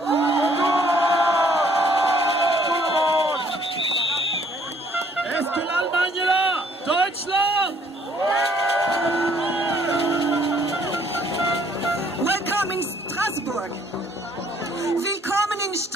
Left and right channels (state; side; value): normal; both; correlation 0.62